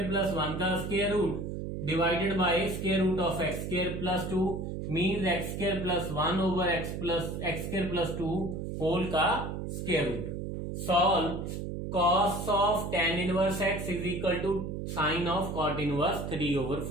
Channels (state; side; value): noise; right; hum, 5 dB below the sound